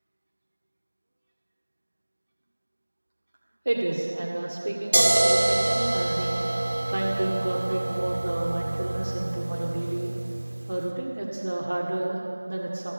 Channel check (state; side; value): inverted; both; correlation -1.00